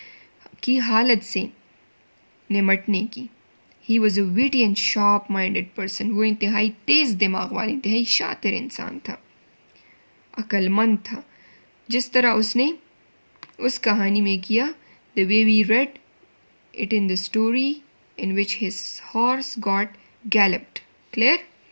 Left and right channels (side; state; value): both; inverted; correlation -1.00